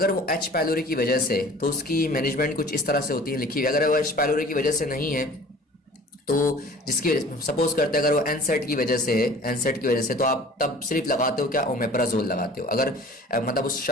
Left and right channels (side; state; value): both; normal; correlation 0.46